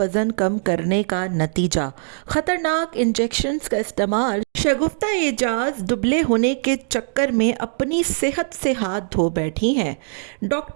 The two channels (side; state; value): left; silent; 65 dB below the other